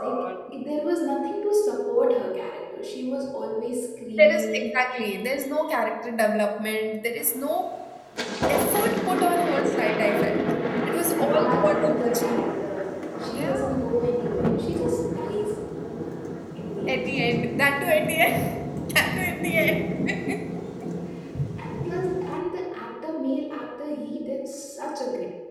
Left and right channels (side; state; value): both; identical; correlation 1.00